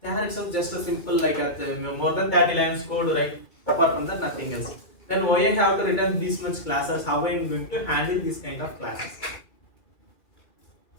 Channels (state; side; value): late; right; 2.2 ms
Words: There is just a simple like more than 30 lines code, right? Apart from that, nothing else. Then why I have to return this much classes? How I am going to handle this kind of classes?